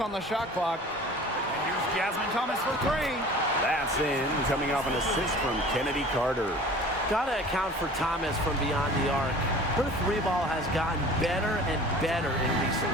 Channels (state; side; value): normal; both; correlation 0.44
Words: the shot clock. And here's Jasmine Thomas for three. That's in, coming off an assist from Kennedy Carter. Gotta account for Thomas from beyond the arc. Her three ball has gotten better and better in recent